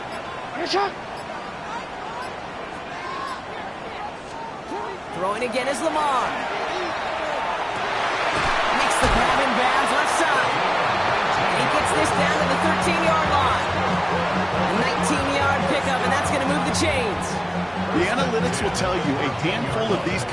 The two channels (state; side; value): identical; both; correlation 1.00